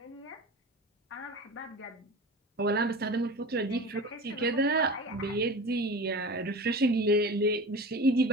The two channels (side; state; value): both; normal; correlation 0.33